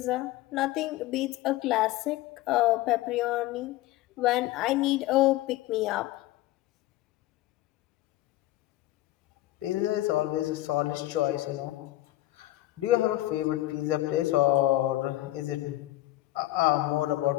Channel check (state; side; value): quieter; right; 16.4 dB